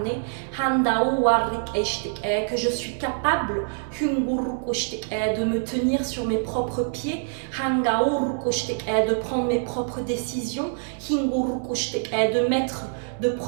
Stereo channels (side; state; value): left; silent; digital silence